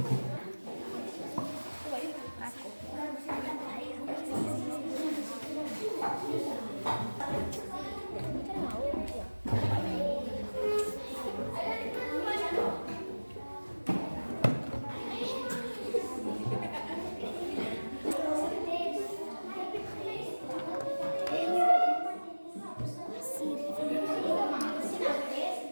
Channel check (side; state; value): both; inverted; correlation -1.00